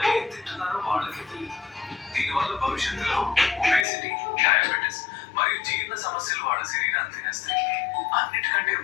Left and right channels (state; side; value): drops out; right; at 3.9 s